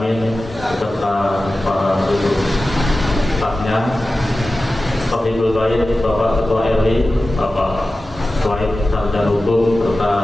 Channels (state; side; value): normal; both; correlation 0.95